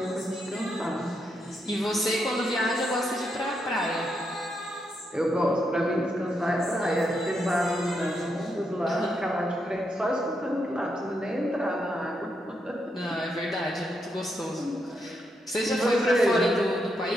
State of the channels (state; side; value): normal; both; correlation 0.81